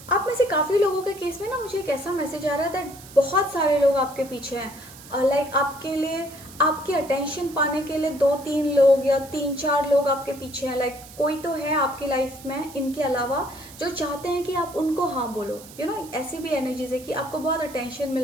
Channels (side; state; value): right; noise; hiss, 18 dB below the sound